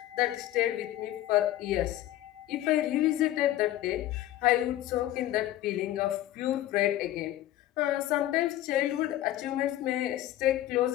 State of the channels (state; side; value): quieter; right; 14.0 dB